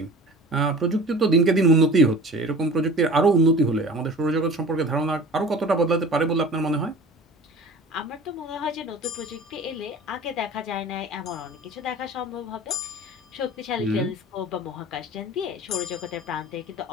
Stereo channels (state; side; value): normal; both; correlation 0.41